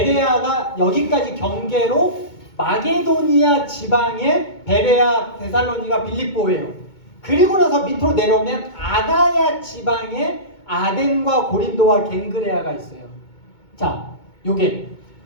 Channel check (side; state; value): right; late; 2.2 ms